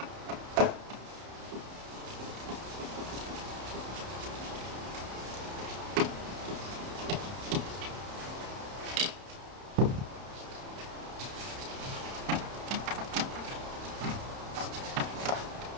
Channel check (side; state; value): left; late; 31 ms